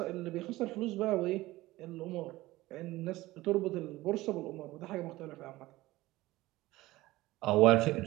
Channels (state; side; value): quieter; left; 18.2 dB